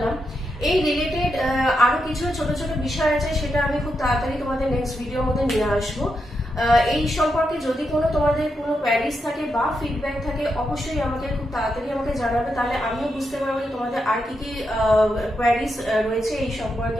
এই রিলেটেড আরো কিছু ছোট ছোট বিষয় আছে, সেটা আমি খুব তাড়াতাড়ি তোমাদের নেক্সট ভিডিওর মধ্যে নিয়ে আসবো। এই সম্পর্কে যদি তোমাদের কোনো কোয়ারিজ থাকে বা ফিডব্যাক থাকে, অবশ্যই আমাকে খুব তাড়াতাড়ি আমাকে জানাবে, তাহলে আমিও বুঝতে পারবো যে তোমাদের আর কি কি কোয়ারিজ রয়েছে এই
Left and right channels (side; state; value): both; normal; correlation 0.84